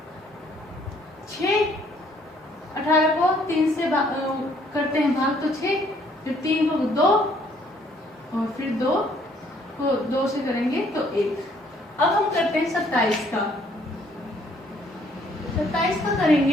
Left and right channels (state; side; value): normal; both; correlation 0.64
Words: 6, 18 को 3 से करते हैं भाग तो 6, फिर 3 को 2 और फिर 2 को 2 से करेंगे तो 1। अब हम करते हैं 27 का। 27 का